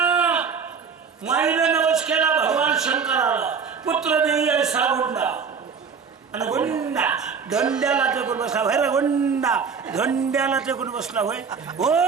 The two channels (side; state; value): left; quieter; 6.0 dB